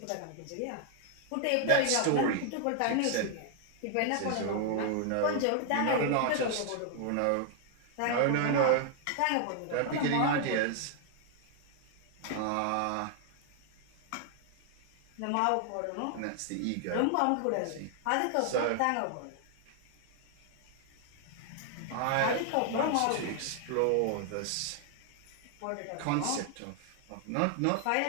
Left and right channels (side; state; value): both; different; correlation 0.00